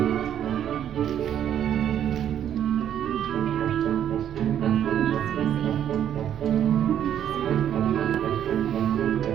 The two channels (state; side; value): quieter; left; 10.0 dB